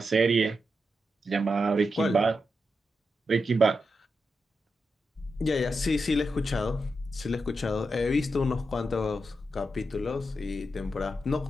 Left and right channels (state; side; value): normal; both; correlation 0.87